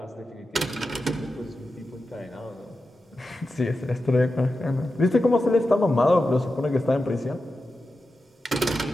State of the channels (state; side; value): normal; both; correlation 0.91